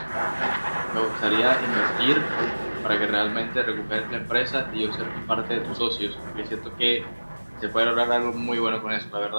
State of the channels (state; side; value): inverted; both; correlation -1.00